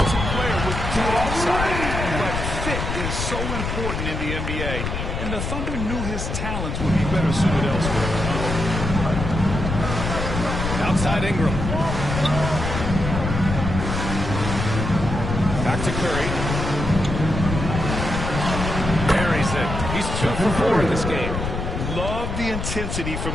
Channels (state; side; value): noise; left; rumble, 3 dB below the sound